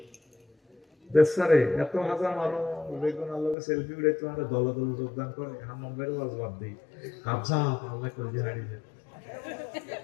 দেশারে এত হাজার মানুষ বেগুন আল্লাহকে সেলফি উঠে তোমার দল দল যোগদান করে, হাম্মাম ভাইয়ের ওয়াজ বাদ দিই, হাফসা আল্লাহ করে হারিয়ে যায়।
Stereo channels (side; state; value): right; drops out; at 3.6 s